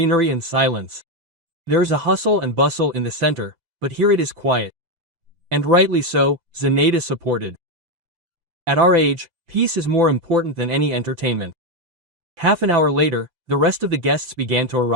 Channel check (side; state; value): left; late; 5.9 ms